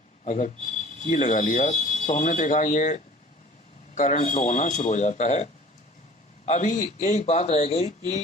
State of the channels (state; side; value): normal; both; correlation 0.47